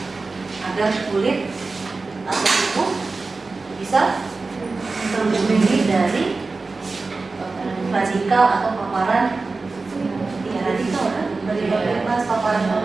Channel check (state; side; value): quieter; left; 3.8 dB